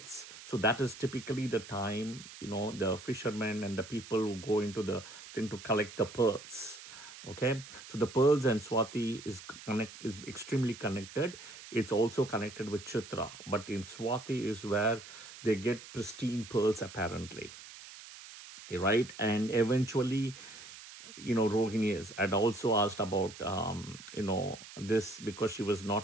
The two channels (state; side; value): noise; right; hiss, 15 dB below the sound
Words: So that is typically the time, the fishermen and the people who go into the thing to collect the pearls. Okay, so the pearls and Swati is extremely connected. It's also connected with Chitra, but in Swati is where they get pristine pearls apparently, right? And eventually, Rohini had also asked about, this, because she was